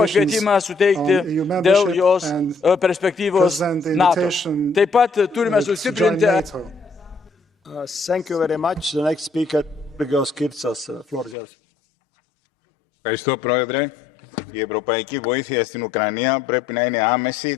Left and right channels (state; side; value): drops out; right; at 11.4 s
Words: pakvietimą suteikti dėl jos perspektyvos NATO. Taip pat turime sustiprinti... Thank you very much. The next speaker, Georgios Kirtsas. Floor is yours. Ευχαριστώ, Πρόεδρε. Η ευρωπαϊκή βοήθεια στην Ουκρανία πρέπει να είναι άμεση,